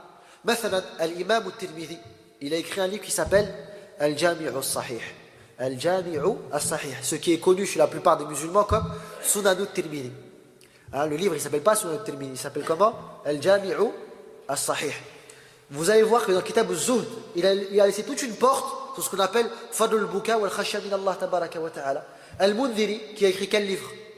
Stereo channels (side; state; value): both; identical; correlation 1.00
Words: Mathalan, al-imam al-Tirmidhi, il a écrit un livre qui s'appelle Al-Jami'u al-Sahih. Al-Jami'u al-Sahih, ce qui est connu chez la plupart des musulmans comme Sunan al-Tirmidhi. Hein, le livre, il ne s'appelle pas Sunan al-Tirmidhi, il s'appelle comment? Al-Jami'u al-Sahih. Vous allez voir que dans Kitab al-Zuhd, il a laissé toute une porte sur ce qu'on appelle Fadl al-Buka wal-Khashya min Allah tabaraka wa ta'ala. Al-Mundhiri, qui a écrit quel livre?